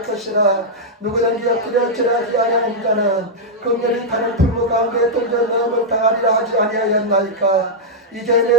것이라. 누구든지 엎드려 절하지 아니하는 자는 긍휼히 타는 풀무 가운데 던져 넣음을 당하리라 하지 아니하였나이까. 이제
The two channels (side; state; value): both; normal; correlation -0.06